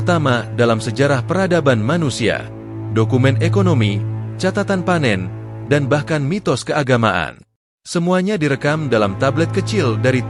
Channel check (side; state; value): both; identical; correlation 1.00